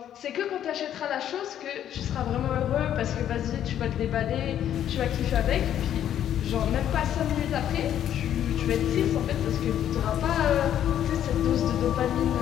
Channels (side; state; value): right; quieter; 10.5 dB